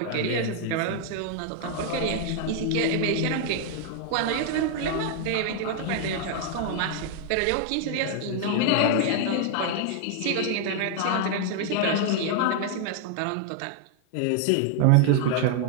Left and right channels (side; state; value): both; different; correlation 0.00